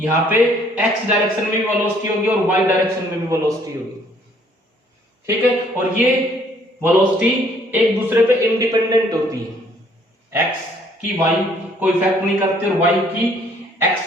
पे x डायरेक्शन में भी वेलोसिटी होगी और y डायरेक्शन में भी वेलोसिटी होगी। ठीक है, और ये वेलोसिटी एक दूसरे पे इंडिपेंडेंट होती है। x की y को इफेक्ट नहीं करती और y की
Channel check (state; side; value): normal; both; correlation 0.62